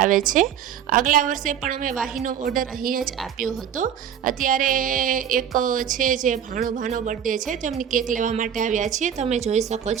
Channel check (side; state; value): left; quieter; 9.0 dB